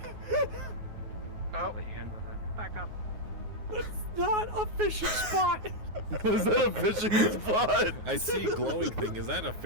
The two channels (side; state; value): left; late; 9.5 ms